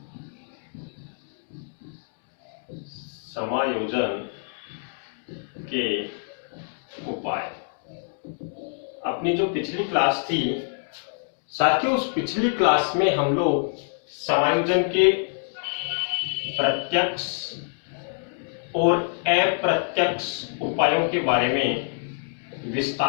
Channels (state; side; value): silent; right; digital silence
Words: समायोजन के उपाय। अपनी जो पिछली क्लास थी साथियों, उस पिछली क्लास में हम लोग समायोजन के प्रत्यक्ष और अप्रत्यक्ष उपायों के बारे में